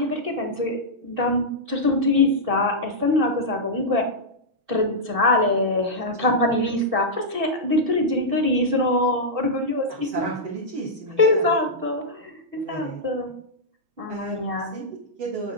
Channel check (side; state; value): left; late; 6.3 ms